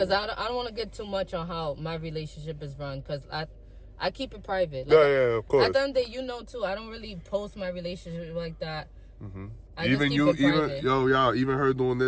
cool. I don't want to get too much on how my relationship is run, because I keep it private. Like, of course. At the end of the day, you know, too, I don't really post my relationship like that. Even her doing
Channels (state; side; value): identical; both; correlation 1.00